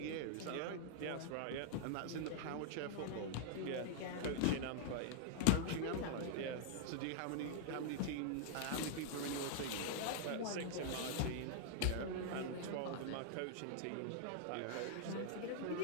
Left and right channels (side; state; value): both; different; correlation -0.01